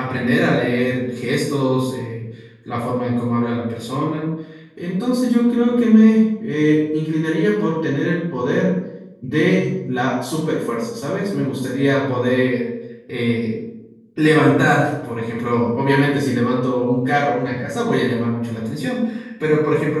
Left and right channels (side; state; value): both; identical; correlation 1.00